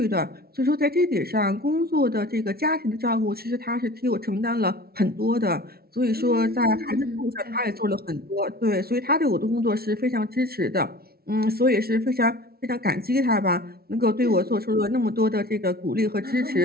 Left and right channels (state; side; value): late; left; 0.44 ms